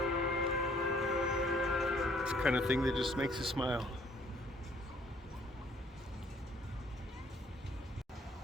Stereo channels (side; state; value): both; normal; correlation 0.61